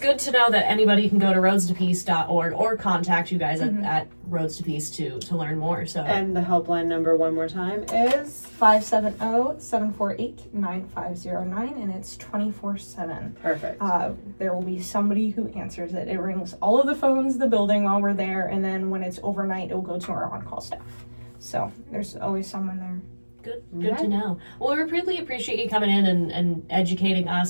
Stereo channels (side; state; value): both; inverted; correlation -1.00